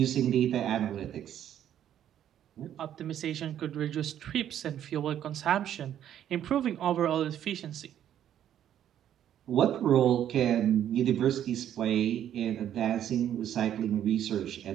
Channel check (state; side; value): quieter; left; 10.6 dB